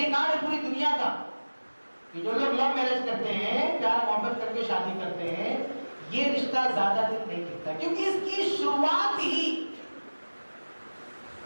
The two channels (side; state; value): both; inverted; correlation -1.00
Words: ہے پوری دنیا کا کہ جو لوگ لو میرج کرتے ہیں, پیار محبت کر کے شادی کرتے ہیں, یہ رشتہ زیادہ دن نہیں ٹکتا کیونکہ اس کی شروعات ہی